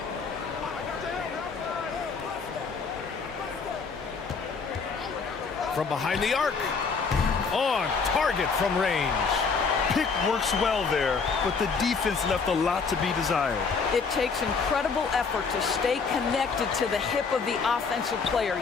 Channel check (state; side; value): quieter; right; 5.1 dB